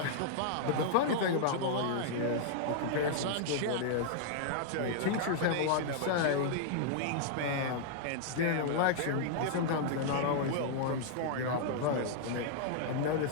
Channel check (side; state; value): both; different; correlation -0.01